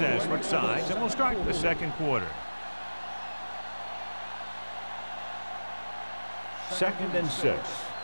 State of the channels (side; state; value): both; inverted; correlation -1.00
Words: switched sides, and we'll start the second quarter. 2nd and 6.